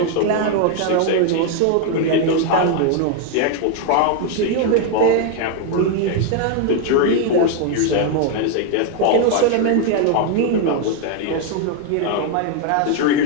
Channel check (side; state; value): both; different; correlation 0.01